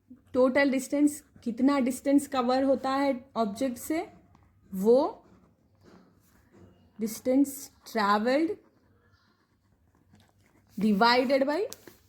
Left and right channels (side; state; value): both; identical; correlation 1.00